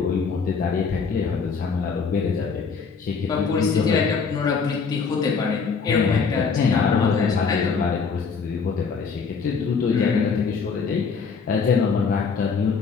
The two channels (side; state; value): right; quieter; 5.4 dB